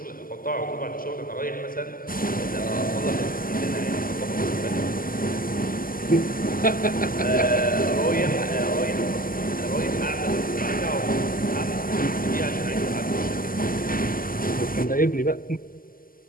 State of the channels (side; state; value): right; late; 0.41 ms